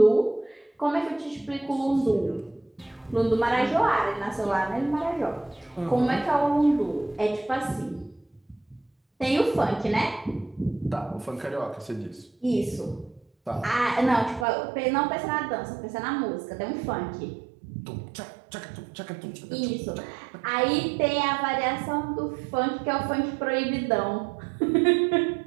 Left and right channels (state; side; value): drops out; left; at 14.5 s